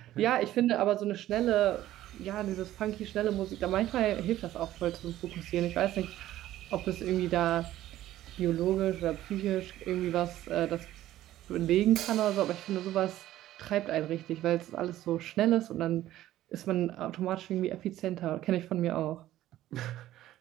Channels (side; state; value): left; quieter; 14.0 dB